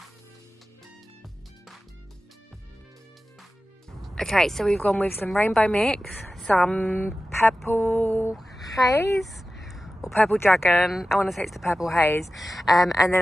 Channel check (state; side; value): normal; both; correlation 0.94